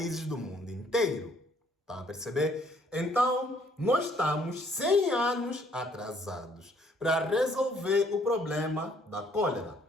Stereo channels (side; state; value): both; normal; correlation 0.63